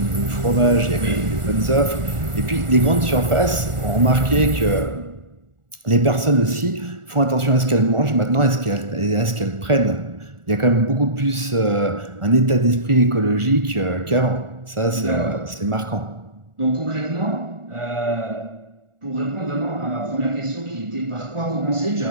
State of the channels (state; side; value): late; left; 1.4 ms